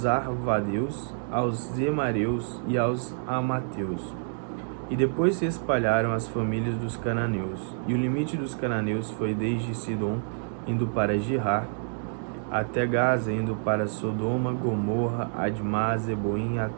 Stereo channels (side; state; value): left; silent; digital silence